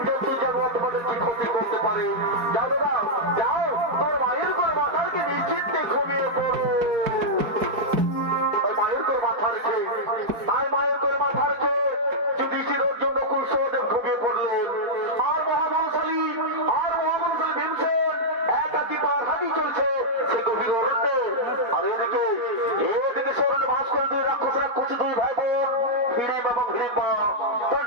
জন্তু জানোয়ার তোমাদের কি ক্ষতি করতে পারে। যাও দাদা যাও, তোর মায়ের কোন মাথাকে নিশ্চিন্তে ঘুমিয়ে পড়ো। মায়ের তোর মাথা রেখে মায়ের তোর মাথা রেখে যুধিষ্ঠির অর্জুন নকুল সহদেব ঘুমিয়ে পড়লেন। আর মহাবলশালী ভীমসেন একাকি পার হাঁটি চলছে সে গভীর অরণ্যে। আর এদিকে শরণে বাস করে দুই রাক্ষস দুই ভাই বোন হিড়িম এবং হিড়িম্বা। তারা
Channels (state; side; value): late; left; 4.6 ms